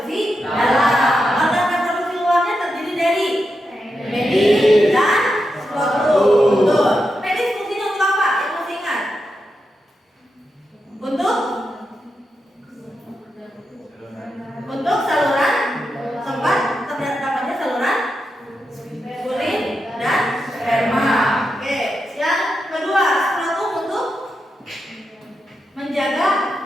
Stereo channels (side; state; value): both; normal; correlation 0.87